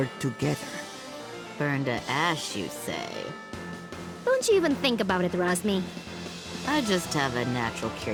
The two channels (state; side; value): identical; both; correlation 1.00